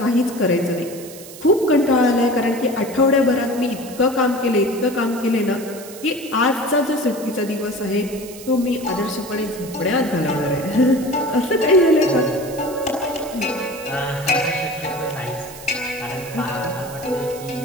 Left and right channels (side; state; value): right; noise; hiss, 16 dB below the sound